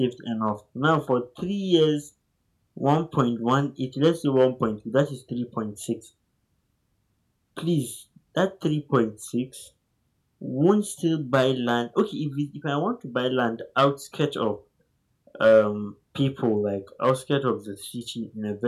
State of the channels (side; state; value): both; identical; correlation 1.00